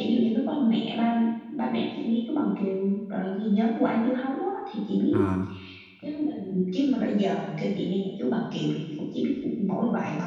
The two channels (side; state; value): both; identical; correlation 1.00